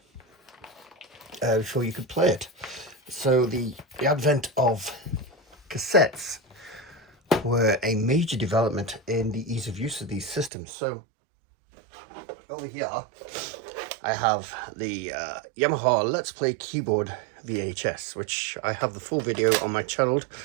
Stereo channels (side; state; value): left; drops out; at 10.5 s